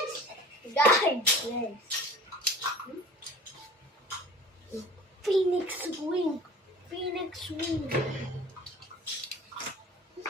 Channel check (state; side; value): normal; both; correlation 0.43